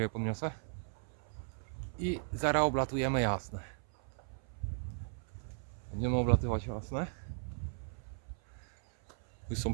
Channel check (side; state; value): left; silent; 53 dB below the other